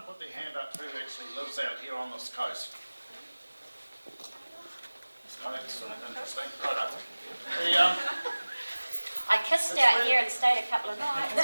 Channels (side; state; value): both; inverted; correlation -1.00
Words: put their hand up who actually lives out here on this coast? Oh, that's interesting. Right up. I kissed out here and stayed a couple of nights. No